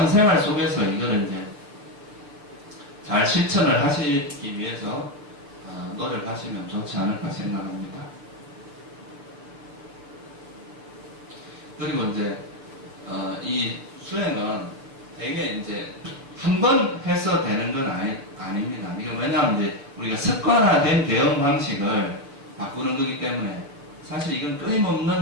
속에서 이거를 이제 잘 실천을 하시기 위해서 노력하시면 좋지 않을까 생각합니다. 그리고 이제 이 수행은 되게 이제 한 번 해서 되는 건 아닙니다. 이게 왜냐하면 이제 우리가 습관화된 대응 방식을 바꾸는 거기 때문에 사실 이건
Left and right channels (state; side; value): late; left; 7.0 ms